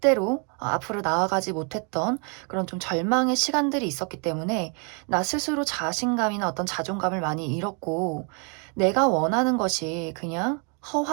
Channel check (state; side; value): quieter; left; 37.6 dB